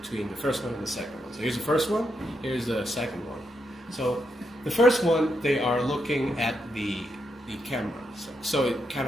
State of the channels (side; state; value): both; normal; correlation 0.81